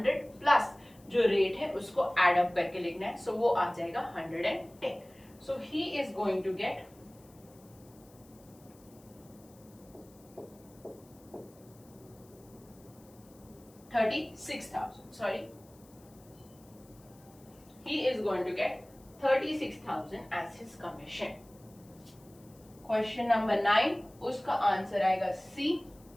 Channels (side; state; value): left; noise; hiss, 27 dB below the sound